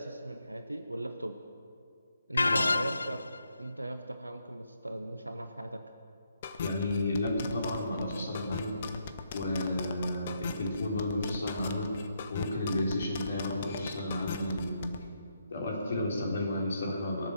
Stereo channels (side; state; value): both; inverted; correlation -0.78